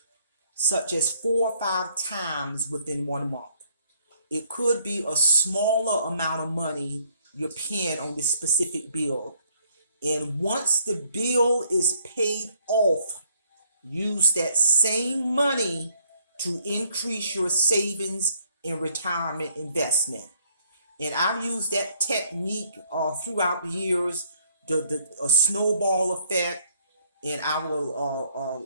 such as 4 or 5 times within 1 month. It could be a smaller amount of money you're paying on this specific bill. And once the bill is paid off, use that same money to increase your savings and retirement investment. And I've used that technique throughout the years, the snowball effect. And I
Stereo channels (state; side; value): inverted; both; correlation -0.67